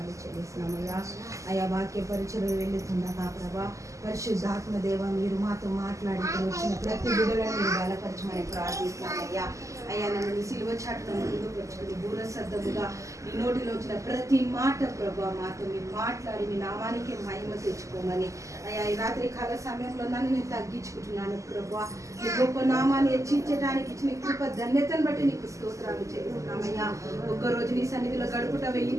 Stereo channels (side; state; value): left; late; 0.16 ms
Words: చెల్లిస్తున్నామయ్యా. అయ్యా, వాక్య పరిచయం వెళ్ళుతుండగా ప్రభా, పరిశుద్ధాత్మ దేవ మీరు మాతో మాట్లాడి వచ్చిన ప్రతి బిడ్డలను మీరు బలపరచమని ప్రార్థిస్తున్నామయ్యా. అయ్యా, నన్ను నీ సిలువ చాటును ముందుకు వచ్చుకుని దూరశబ్దముగా నీ నోటిలో వచ్చిన ప్రతి మాట ప్రభా మాతో మీరు మాట్లాడి మీ నామానికి మహిమ తెచ్చుకోమని అయ్యా, ఈ రాత్రి కాల సమయంలో నన్ను నేను తగ్గించుకుంటున్నాను ప్రభా. నీ గొప్ప నామాన్ని హెచ్చించడానికి ఇచ్చిన కృప ధన్యతను బట్టి నీకు స్తోత్రాలు చెల్లిస్తున్నామయ్యా. ఒక్కరోజు నీ సన్నిధిలో గడుపుట 1000